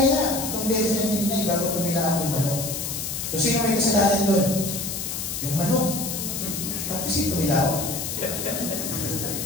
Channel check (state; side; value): noise; left; hiss, 4 dB below the sound